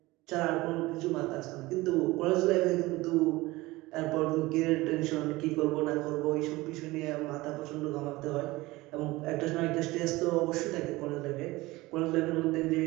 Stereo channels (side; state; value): left; quieter; 20.2 dB